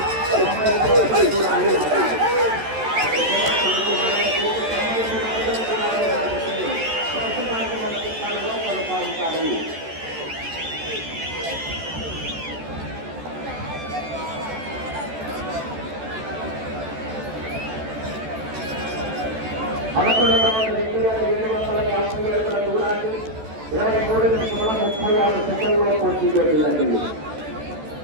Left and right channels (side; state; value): left; late; 14 ms